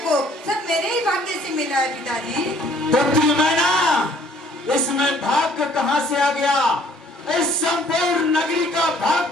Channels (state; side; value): normal; both; correlation 0.59